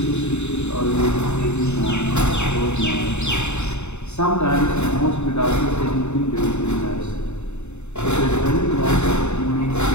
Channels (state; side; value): late; right; 0.82 ms